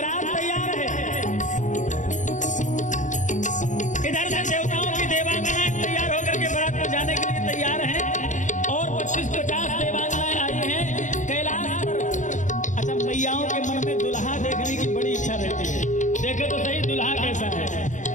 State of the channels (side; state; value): right; late; 0.36 ms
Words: तैयार है, इधर से देवताओं की देवांगनाएं तैयार होकर के बारात में जाने के लिए तैयार हैं और 25-50 देवांगनाएं आई हैं कैलाश पर। अच्छा, मैयाओं के मन में दुल्हा देखने की बड़ी इच्छा रहती है, देखे तो सही दुल्हा कैसा है।